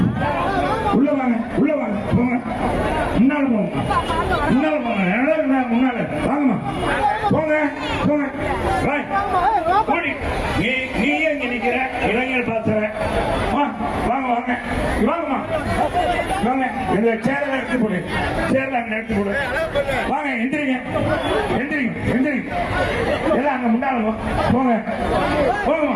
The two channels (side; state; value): both; identical; correlation 1.00